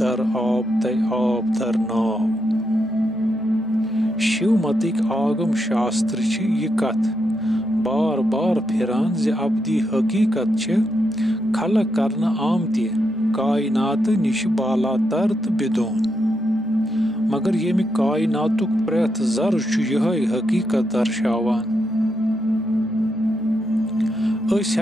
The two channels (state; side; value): normal; both; correlation 0.82